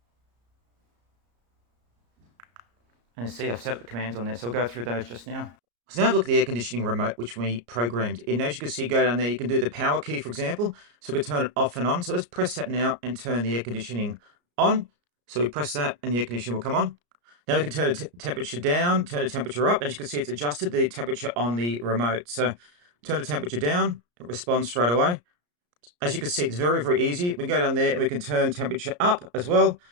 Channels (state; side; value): late; left; 34 ms